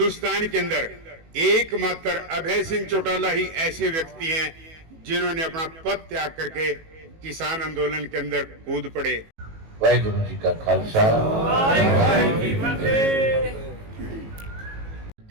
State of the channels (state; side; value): late; left; 18 ms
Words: के अंदर एकमात्र अभय सिंह चौटाला ही ऐसे व्यक्ति हैं जिन्होंने अपना पद त्याग करके किसान आंदोलन के अंदर कूद पड़े। वाहिगुरु जी का खालसा, वाहिगुरू जी की फतेह।